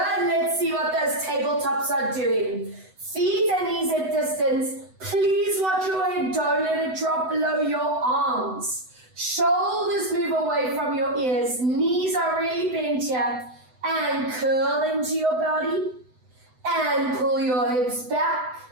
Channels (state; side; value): late; left; 7.9 ms